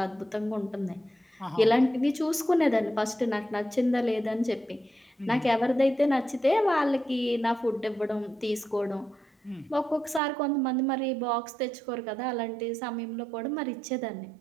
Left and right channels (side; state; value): left; drops out; at 10.2 s